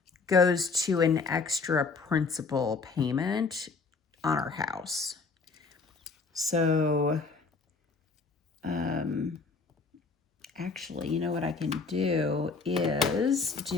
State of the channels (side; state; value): right; quieter; 4.4 dB